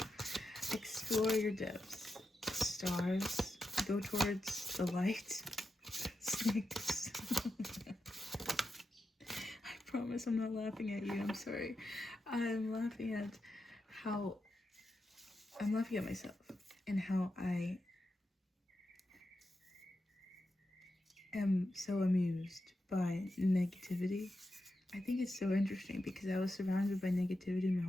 Explore your depths. Stars, go towards the light. Snakes. I promise I'm not laughing at you, I'm sorry. I'm laughing at myself and how I am so amused by negativity. I think it's so interesting because I was surrounded by negativity my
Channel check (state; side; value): normal; both; correlation 0.88